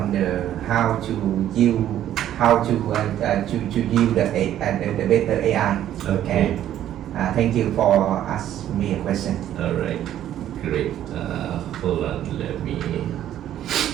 the how to use the better AI. Okay. And thank you for asking me a question. All right. Great. Hold on. Let me.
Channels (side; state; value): left; quieter; 11.6 dB